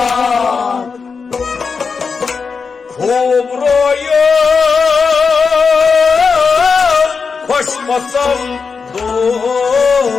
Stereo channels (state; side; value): quieter; right; 5.2 dB